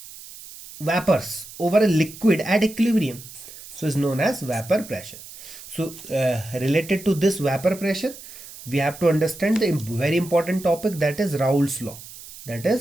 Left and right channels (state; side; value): noise; right; hiss, 16 dB below the sound